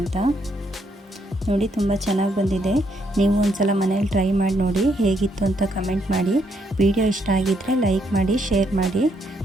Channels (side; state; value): both; normal; correlation 0.74